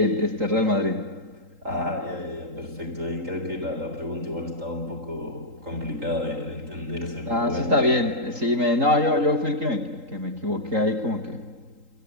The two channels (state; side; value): late; left; 3.8 ms